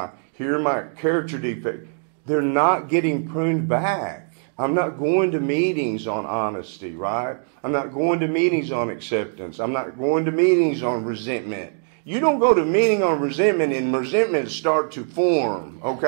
character defect. They're not getting pruned back. I'm not going to meetings on honesty, right? I'm not going to meetings on acceptance. I'm not going to meetings on resentment. You don't go to meeting on resentment and resentment start to form,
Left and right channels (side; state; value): left; silent; 60 dB below the other